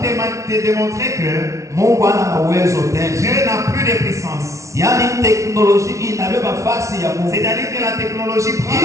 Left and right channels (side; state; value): left; late; 0.14 ms